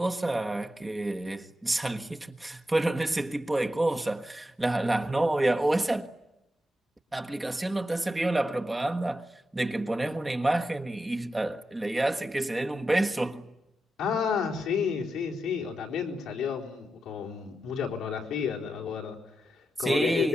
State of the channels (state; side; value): normal; both; correlation 0.89